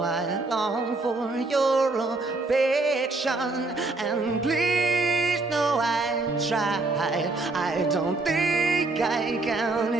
I long for your affection, and please know I tried. I don't think I can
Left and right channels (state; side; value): quieter; left; 3.3 dB